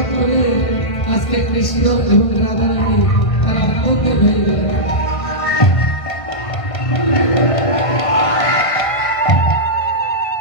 করে আজকে কৃষ্ণ এবং রাধারানী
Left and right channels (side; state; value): right; late; 1.5 ms